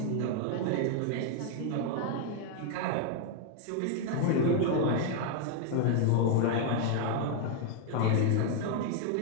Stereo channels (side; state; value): both; different; correlation 0.01